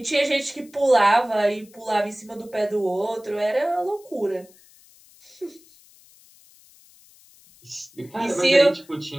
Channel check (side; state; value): left; noise; hiss, 27 dB below the sound